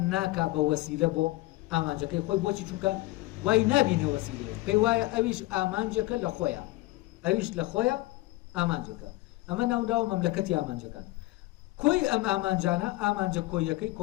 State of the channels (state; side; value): quieter; right; 19.3 dB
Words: ناکا بە وەسیلە بۆ ئامانجەکەی خۆی. بۆچی؟ چونکە وای نابینێ وەسیلەیە، پێی وایە ئەویش ئامانجەکە لە خۆیە، ئەویش لە خۆیە ئامانجەکە. ئەمە ناوداوە مەملەکەتی ئامانجەکان. کۆی ئەم ئامانجانە ئامانجە کۆیەکەی